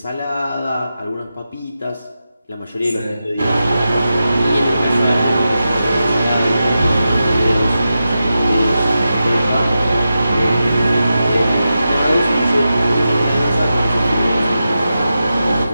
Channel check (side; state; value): both; inverted; correlation -0.90